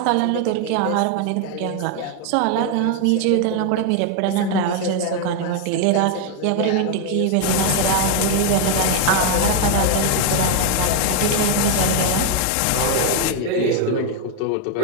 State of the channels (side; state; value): both; different; correlation 0.01